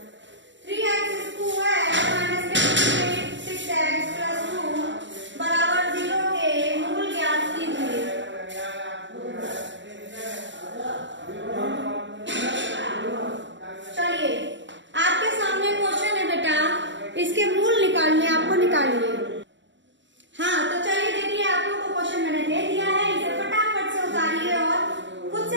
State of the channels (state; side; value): late; left; 0.54 ms